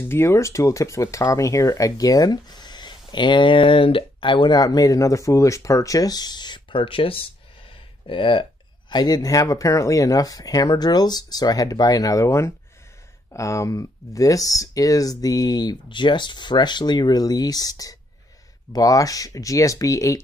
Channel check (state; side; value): normal; both; correlation 0.73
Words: Tool Tips with Tommy here again. And I went out and made another foolish purchase. I didn't have apparently enough hammer drills, so I had to buy another one. This is the just freshly released Bosch